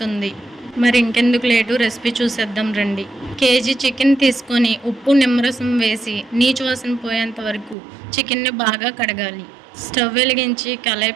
మరి ఇంకెందుకు లేటు, రెసిపీ చూసేద్దాం రండి. కేజీ చికెన్ తీసుకొని ఉప్పు, నిమ్మరసం వేసి నీచు వాసన పోయేంత వరకు చికెన్ని బాగా కడగాలి. స్టవ్ వెలిగించి కళాయి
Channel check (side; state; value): left; drops out; at 7.8 s